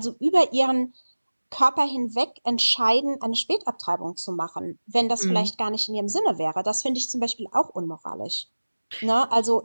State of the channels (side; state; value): both; inverted; correlation -1.00